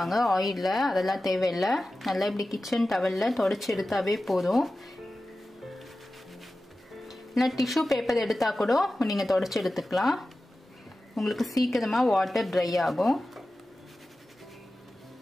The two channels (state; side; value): normal; both; correlation 0.95